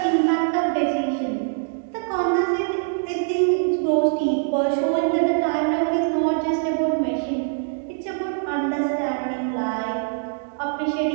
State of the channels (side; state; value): left; silent; digital silence